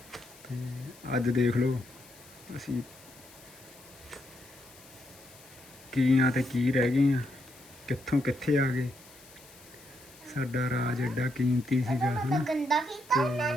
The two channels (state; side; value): noise; left; hiss, 22 dB below the sound